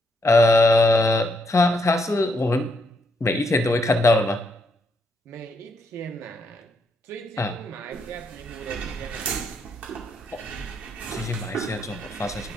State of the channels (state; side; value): normal; both; correlation 0.76